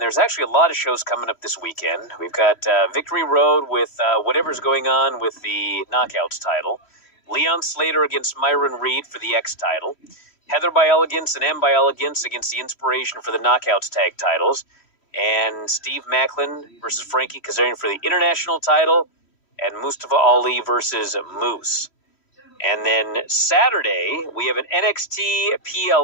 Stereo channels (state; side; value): late; right; 3.1 ms